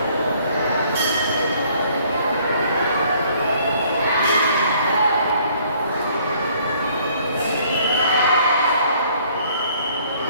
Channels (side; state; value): both; inverted; correlation -0.61